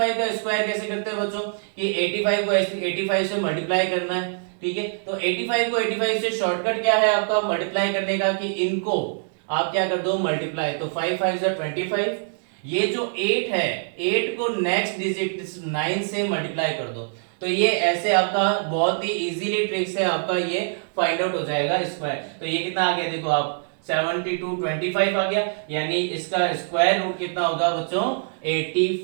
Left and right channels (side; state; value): left; silent; digital silence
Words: का स्क्वायर कैसे करते हैं बच्चों कि 85 को 85 से मल्टीप्लाई करना है, ठीक है तो 85 को 85 से शॉर्टकट क्या है आपका मल्टीप्लाई करने का कि इनको आप क्या कर दो मल्टीप्लाई, तो 5 5 25, ये जो 8 है 8 को नेक्स्ट डिजिट 9 से मल्टीप्लाई कर दो तो ये ऐसे आपका बहुत ही इजीली ट्रिक से आपका ये फाइंड आउट हो जाएगा स्क्वायर। तो ये कितना आ गया देखो आप 72 25 आ गया यानी इसका स्क्वायर रूट कितना होगा बच्चों